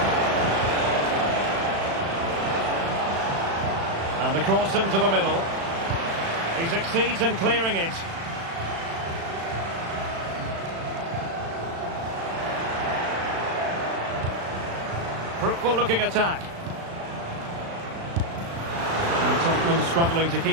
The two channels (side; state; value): left; late; 36 ms